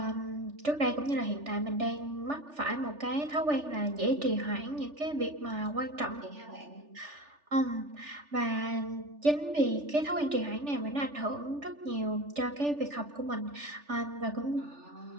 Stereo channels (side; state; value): left; late; 3.4 ms